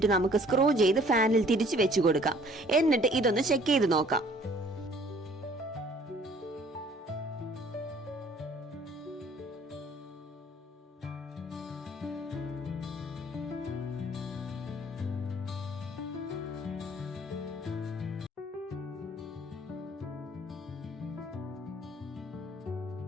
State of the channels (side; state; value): both; normal; correlation 0.56